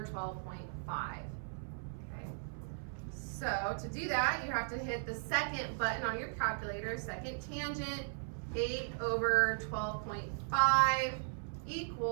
12.5. Okay. So to do that, you have to hit the second button on your calculator, second tangent, 8 over 12.5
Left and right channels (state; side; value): silent; left; 53 dB below the other